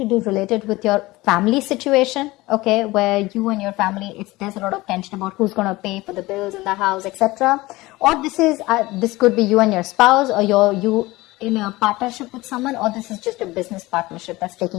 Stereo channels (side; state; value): right; quieter; 20.1 dB